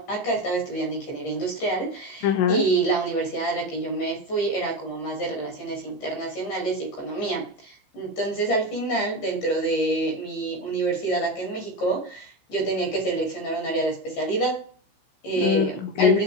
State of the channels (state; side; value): late; right; 15 ms